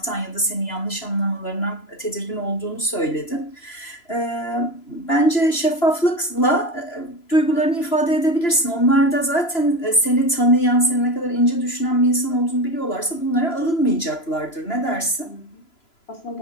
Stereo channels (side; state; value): right; late; 3.0 ms